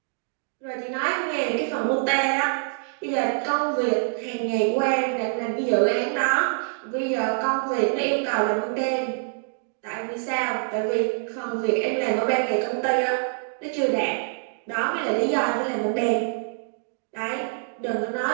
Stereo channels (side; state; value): left; silent; digital silence